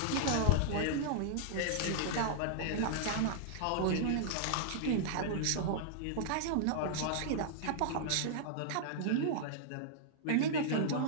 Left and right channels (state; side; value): different; both; correlation -0.01